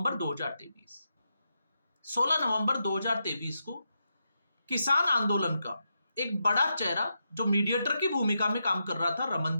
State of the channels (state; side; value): inverted; both; correlation -0.85